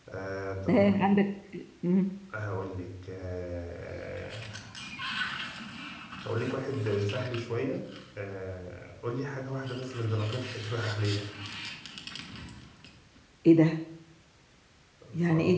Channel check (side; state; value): both; identical; correlation 1.00